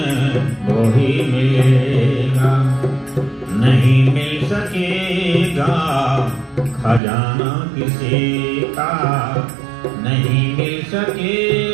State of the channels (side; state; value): left; drops out; at 7.0 s